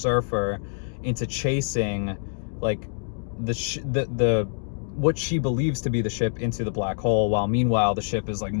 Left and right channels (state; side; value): silent; right; 61 dB below the other